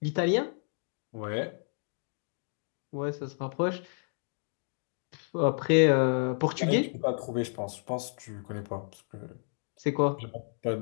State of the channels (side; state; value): right; silent; digital silence